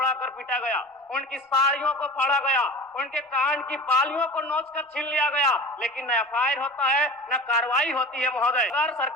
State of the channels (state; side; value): normal; both; correlation 0.34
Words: कर पीटा गया, उनकी साड़ियों को फाड़ा गया, उनके कान की बालियों को नोच कर छीन लिया गया, लेकिन न एफआईआर होता है न कार्रवाई होती है। महोदय, अगर